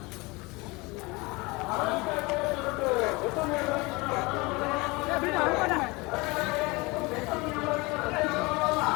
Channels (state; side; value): quieter; right; 24.9 dB